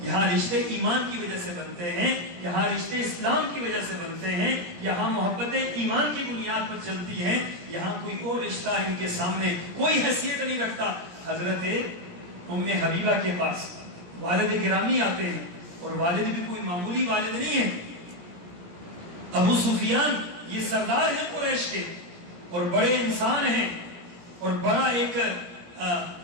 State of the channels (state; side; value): late; left; 17 ms